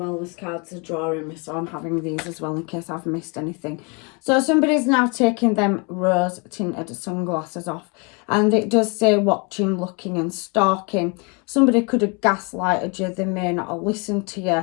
cards are drawing me, so I'm having these as well in case I've missed anything. So somebody's now taking them rose tinted sunglasses off, and it does say watching, looking and stalking. Somebody could have gaslighted you, they may not have listened to you.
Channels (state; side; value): quieter; right; 32.2 dB